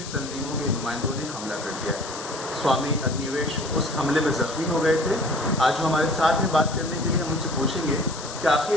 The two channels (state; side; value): noise; left; hiss, 11 dB below the sound